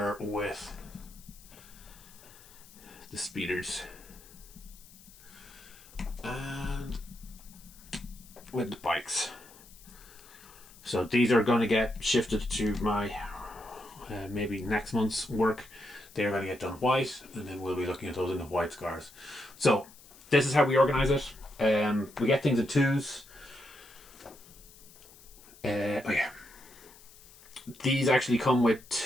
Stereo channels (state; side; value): noise; left; hiss, 22 dB below the sound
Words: with the speeders. And with the bikes. So these are going to get shifted to my maybe next month's work. They're going to get done white and then we'll be looking at those in the white scars. So this is how we organize it. We get things in twos. Oh yeah. These actually come with